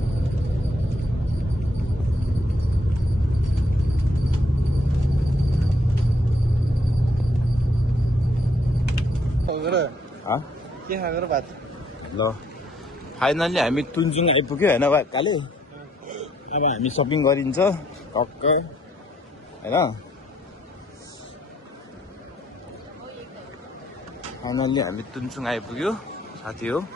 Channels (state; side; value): normal; both; correlation 0.69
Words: के खाएर भात ल। फाइनल्ली हामी तुनचुङ आइपुग्यो होइन काले। अब हामी सपिङ गरिन्छ टक्क होइन। फाइनल्ली हामी तुनचुङ आइपुग्यो साथी हो।